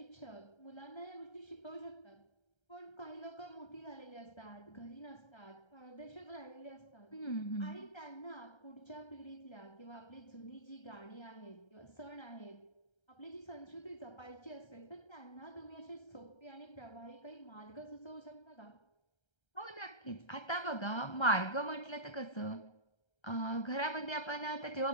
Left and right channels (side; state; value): right; late; 1.3 ms